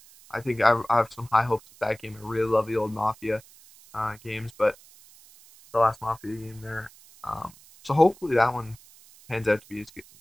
I think I have some high hopes with that game. I really love the old mafia games, but the last mafia game there. So hopefully that one pans out to be as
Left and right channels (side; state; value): right; noise; hiss, 24 dB below the sound